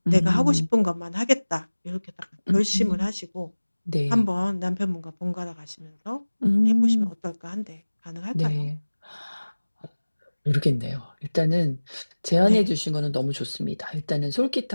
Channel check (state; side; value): inverted; both; correlation -1.00